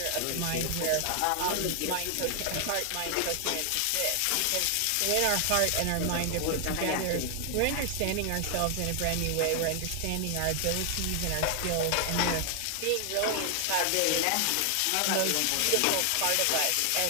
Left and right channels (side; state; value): both; different; correlation 0.00